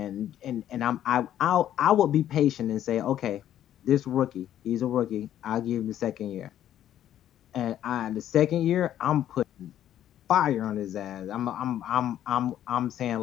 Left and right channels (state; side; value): quieter; right; 11.4 dB